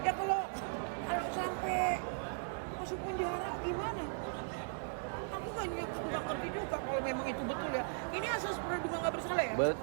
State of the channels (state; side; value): silent; left; digital silence